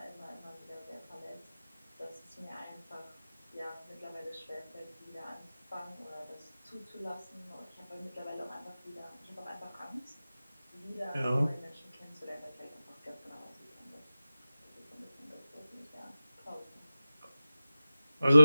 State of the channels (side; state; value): both; inverted; correlation -0.94